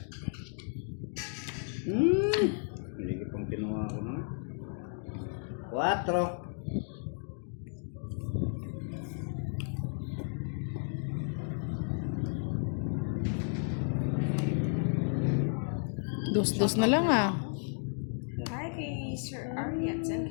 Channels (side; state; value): right; silent; 56 dB below the other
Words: Hindi ko pang kinuha ko na. 4. Dos-dos na lang ah. Hi kay Sir Ariat and